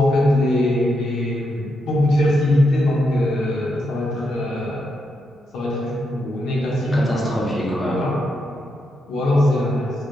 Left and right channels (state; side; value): normal; both; correlation 0.82